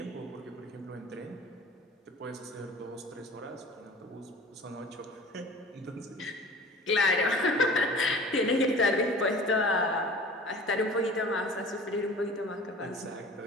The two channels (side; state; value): both; normal; correlation 0.43